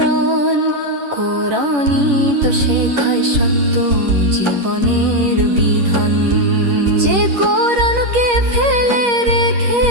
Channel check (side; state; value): left; late; 10 ms